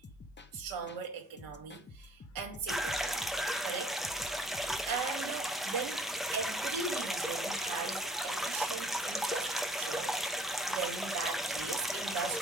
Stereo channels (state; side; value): normal; both; correlation 0.58